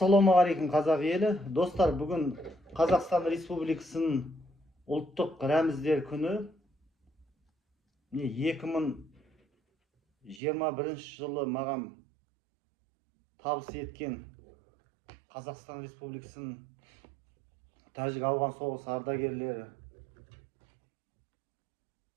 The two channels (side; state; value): left; drops out; at 10.4 s